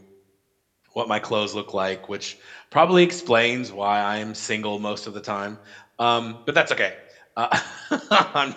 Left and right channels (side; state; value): both; identical; correlation 1.00